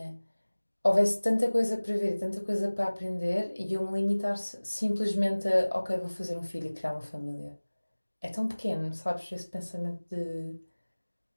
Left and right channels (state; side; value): inverted; both; correlation -1.00